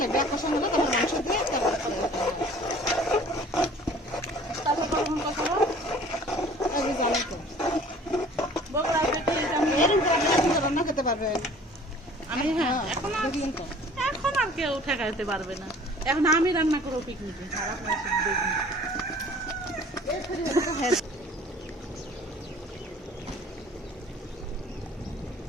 লাগবে, কষান হলে তারপর মাংস দিয়ে তারপর কখন কষাবো? আমি জানি তো বগুড়া থেকে এরকম করে আপনি এখন তো রান্না খেতে পারবেন। আমি হ্যাঁ দেখলেন তো এখন আর কেউ ঠেকাইতে পারবে না। এখন আমি রান্না করবো পিকনিকে, আর আপনারা শুধু দেখুন।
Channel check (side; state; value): both; normal; correlation 0.49